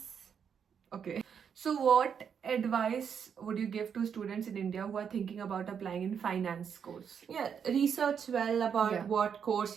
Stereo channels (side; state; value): left; quieter; 7.3 dB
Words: Okay. So, what advice would you give to students in India who are thinking about applying in finance course? Yeah, research well about what course